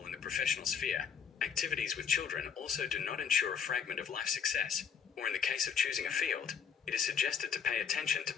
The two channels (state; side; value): quieter; right; 7.2 dB